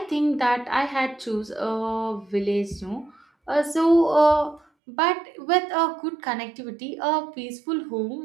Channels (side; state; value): left; drops out; at 4.6 s